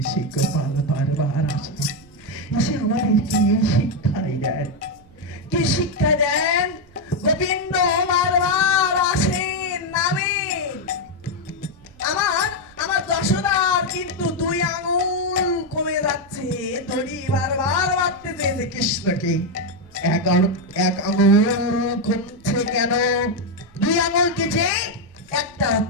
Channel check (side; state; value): both; normal; correlation 0.04